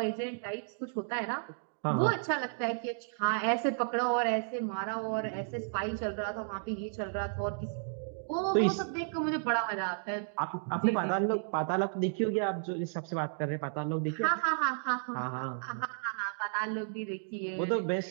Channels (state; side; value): silent; left; digital silence